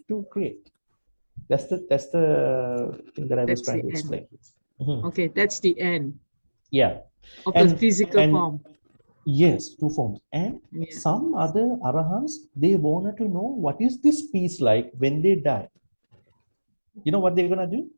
to create. That's the thing that I was trying to explain. Okay, that's the end. Yeah. Of the physical form. Yes, 2 forms. And some other arahants, they wanted to know what is this peace like when they die. You know what they're gonna do?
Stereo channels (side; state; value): both; inverted; correlation -1.00